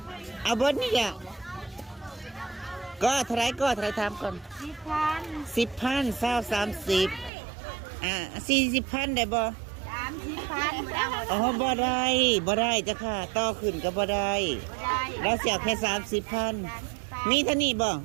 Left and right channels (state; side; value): drops out; left; at 7.3 s